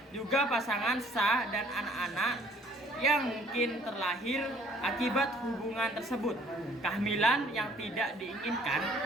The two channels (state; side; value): normal; both; correlation 0.59